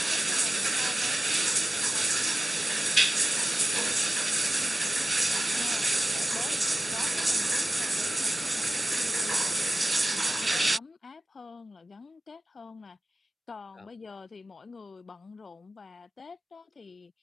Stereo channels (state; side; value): normal; both; correlation 0.94